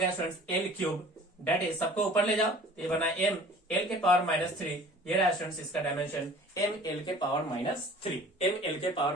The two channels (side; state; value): both; normal; correlation 0.47